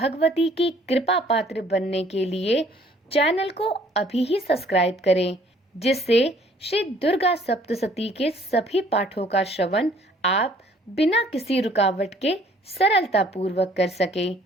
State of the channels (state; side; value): normal; both; correlation 0.59